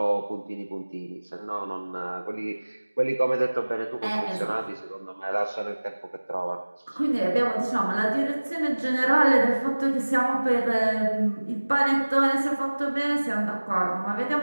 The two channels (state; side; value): inverted; both; correlation -1.00